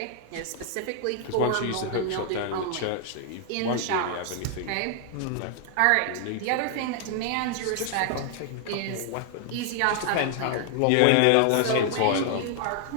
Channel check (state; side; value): different; both; correlation 0.00